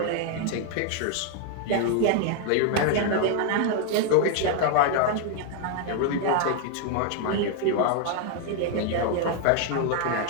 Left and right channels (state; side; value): different; both; correlation 0.00